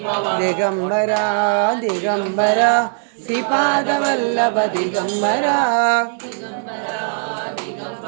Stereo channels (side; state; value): left; silent; digital silence